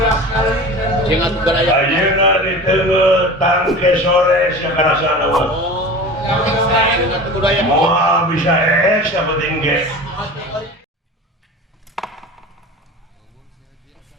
Jeung atuh garaya. Ayeuna di teu tangke sore sia karasana mah. Jeung atuh budaya. Moal bisa yang penting ge.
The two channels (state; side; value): normal; both; correlation 0.35